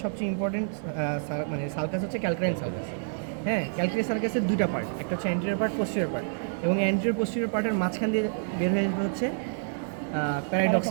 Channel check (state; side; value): silent; left; digital silence